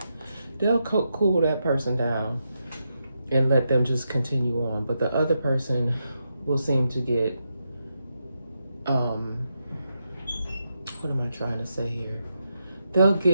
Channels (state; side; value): inverted; both; correlation -0.84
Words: They'll cool that person down and let them just continue on. But the other person will seem to get, what am I trying to say here? They'll